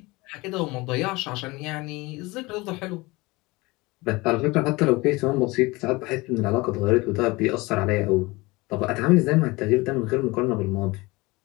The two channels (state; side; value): quieter; right; 22.8 dB